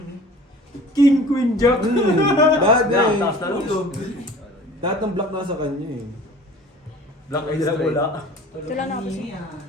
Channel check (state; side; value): normal; both; correlation 0.45